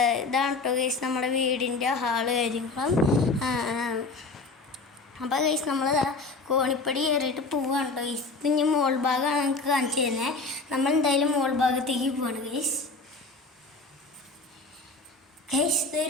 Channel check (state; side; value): quieter; right; 3.7 dB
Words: ഇതാണ് കേട്ടോ ഗൈസ് നമ്മുടെ വീടിൻ്റെ ഹാള് കാര്യങ്ങളും. അപ്പോൾ ഗൈസ് നമ്മൾ കോണിപ്പടി കയറിയിട്ട് പോവാണ് കേട്ടോ ഗൈസ്. ഇനി മോൾ ഭാഗമാണ് നമുക്ക് കാണിച്ചു തരുന്നത്. നമ്മൾ എന്തായാലും മോൾ ഭാഗത്തേക്ക് പോവാണ് ഗൈസ്. ഗൈസ്